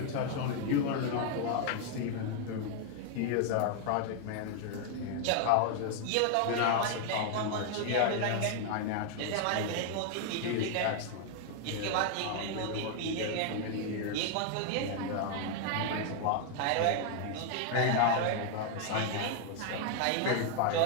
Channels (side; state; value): both; different; correlation 0.00